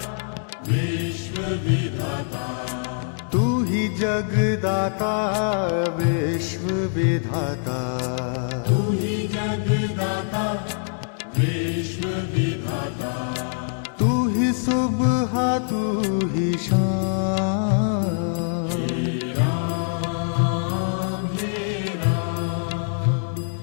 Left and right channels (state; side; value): silent; right; digital silence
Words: विश्व विधाता, तू ही जगदाता विश्व विधाता, तू ही जगदाता विश्व विधाता। तू ही सुबह तू ही शाम, राम हे राम,